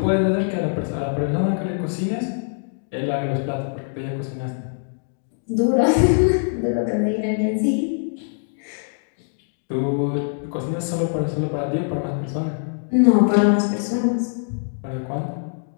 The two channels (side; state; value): right; silent; digital silence